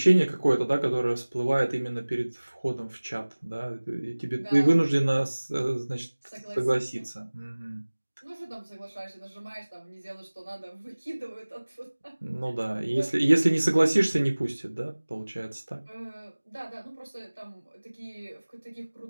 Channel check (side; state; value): both; inverted; correlation -1.00